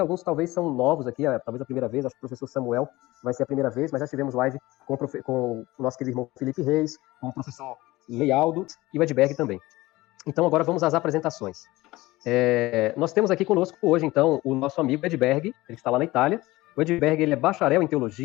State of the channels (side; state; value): right; quieter; 19.2 dB